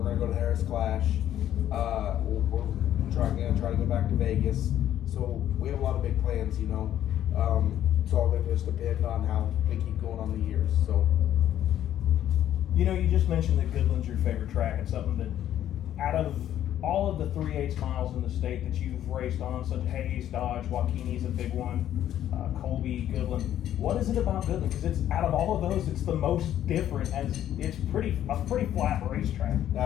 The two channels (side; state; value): right; quieter; 11.4 dB